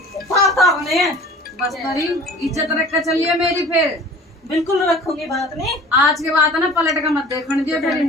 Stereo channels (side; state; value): both; normal; correlation 0.44